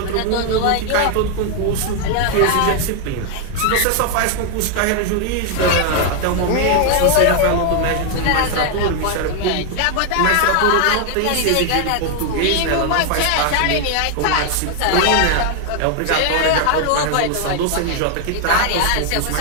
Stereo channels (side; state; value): both; different; correlation 0.00